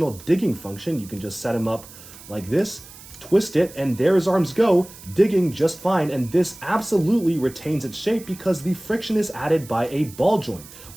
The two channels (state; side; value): noise; right; hiss, 18 dB below the sound